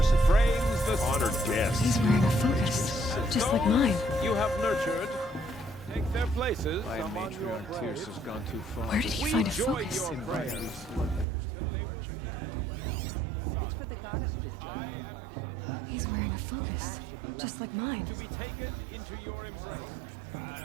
frames the honored guests. He's wearing a focus, just like mine. You have nurtured. Take their places. My among your matriarch prayers. Tierce has gone too far. Where did he find a focus? Invite these bloodthirsty Karja into our lives. It's for the goddess to judge the Karja. He's wearing a focus, just like mine. To be taken into your embrace.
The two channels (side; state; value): left; drops out; at 11.2 s